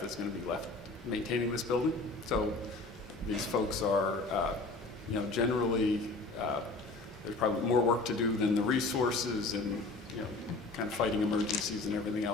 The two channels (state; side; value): quieter; right; 3.4 dB